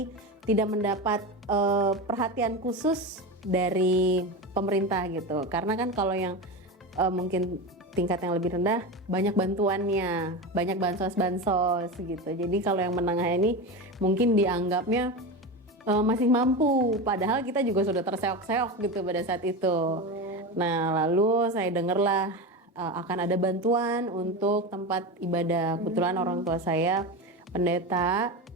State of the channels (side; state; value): both; normal; correlation 0.22